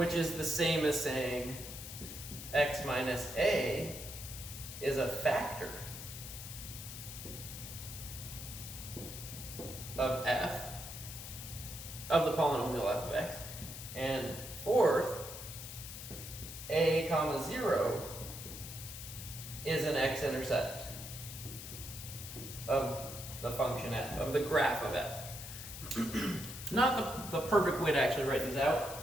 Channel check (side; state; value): left; noise; hiss, 10 dB below the sound